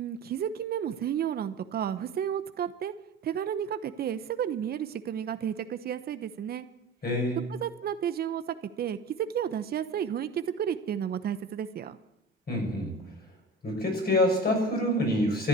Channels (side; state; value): left; quieter; 3.1 dB